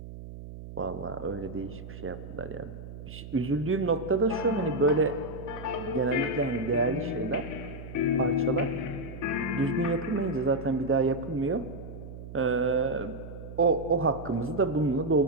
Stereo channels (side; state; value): right; noise; hum, 12 dB below the sound